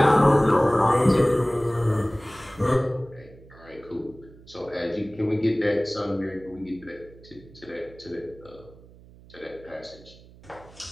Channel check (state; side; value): noise; right; hum, 23 dB below the sound